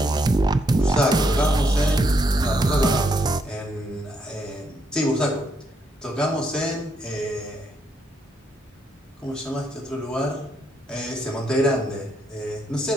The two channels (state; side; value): normal; both; correlation 0.76